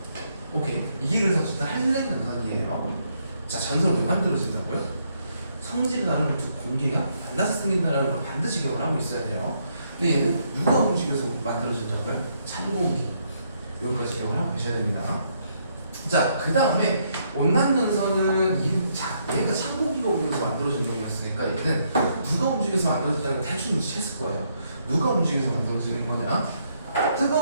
오케이? 이게 그래서 진짜 한랭 전선이에요. 자, 전선 왜 만들어진다고요? 성질이 다른 두 공기가 만나서 생긴다는 걸 반드시 기억을 하고 있어야 돼요. 근데 얘는 누가 움직여서 만들어진다고요? 찬 공기. 여기까지 기억을 하고 계셔야 됩니다. 자, 그 다음에 온난전선은 얘가 찬 공기가 움직여서 만들어진 놈이었으니까, 얘는 누가 움직여서 만들어진다는 걸 대충 인식했을 거예요. 누가 움직여서 만들어지는 거냐?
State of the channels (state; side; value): inverted; both; correlation -0.74